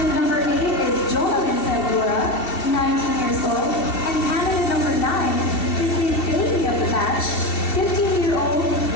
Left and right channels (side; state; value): right; late; 2.7 ms